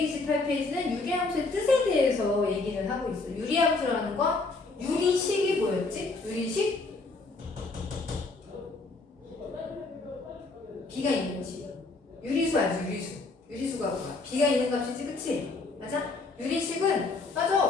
유리함수의 뜻에 대해서 얘기를 하고 있어. 유리함수라는 건 유리식이 뭐였지? 유리식? 비가 있는 식. 유리수 알지? 유리수. 유리수가 뭐야? 비가 있는 값이지, 그치? 맞아? 유리식은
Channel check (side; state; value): right; quieter; 3.6 dB